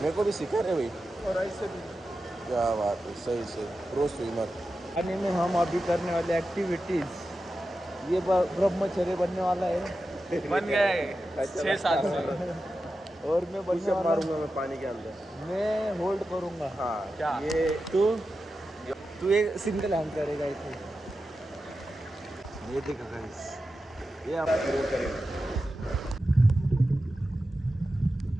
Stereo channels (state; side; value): normal; both; correlation 0.91